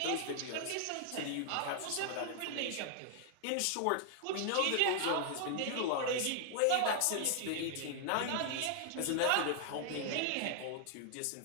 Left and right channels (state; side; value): different; both; correlation 0.00